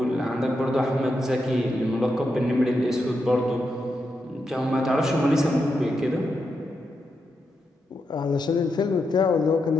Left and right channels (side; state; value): both; normal; correlation 0.85